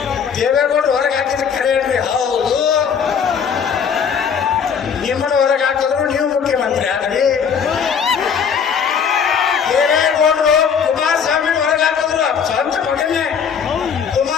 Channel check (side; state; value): right; quieter; 7.0 dB